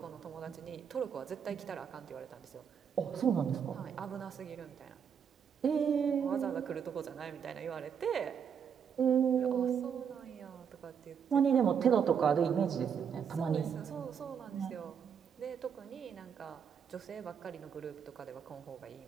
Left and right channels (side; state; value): left; quieter; 7.4 dB